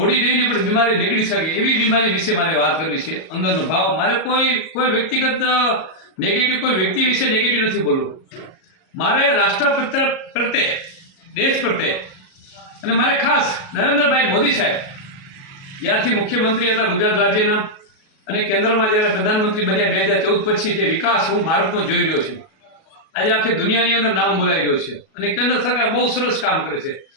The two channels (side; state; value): right; late; 37 ms